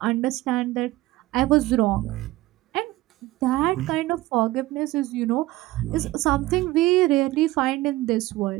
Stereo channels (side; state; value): left; quieter; 18.0 dB